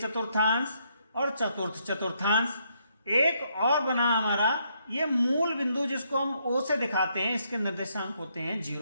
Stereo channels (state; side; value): inverted; both; correlation -0.74